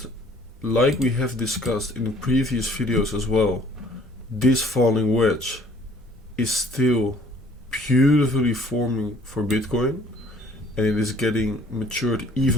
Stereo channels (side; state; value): both; normal; correlation 0.57